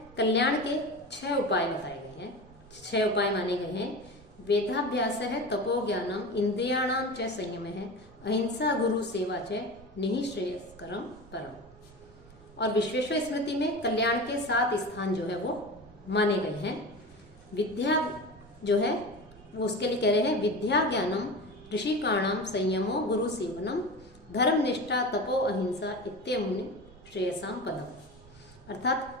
कल्याण के 6 उपाय बताए गए हैं, 6 उपाय माने गए हैं। वेदाभ्यास है, तपो ज्ञानम, इंद्रियाणाम च संयम है, अहिंसा गुरु सेवा च निःश्रेयस्करम परम। और विश्वेश्वर स्मृति में कल्याण के 7 स्थान जो है वो माने गए हैं। विद्या जो है वो उसके लिए कह रहे हैं, विद्या ज्ञानम ऋषिकाणाम संयमो गुरु सेवनम धर्म निष्ठा तपो अहिंसा इत्यमुनि श्रेयसाम पदम।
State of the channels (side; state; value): right; noise; rumble, 22 dB below the sound